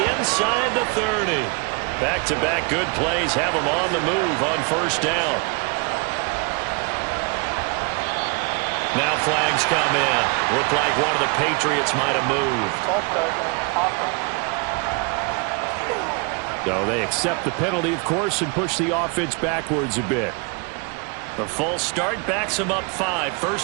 inside the 30. Back-to-back good plays have him on the move on 1st down. Now flags come in. Looked like one of the Patriots might have moved. False start, offense. So they accept the penalty, of course, and push the offense backwards a bit. The false start backs him up 5,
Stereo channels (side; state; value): left; quieter; 32.0 dB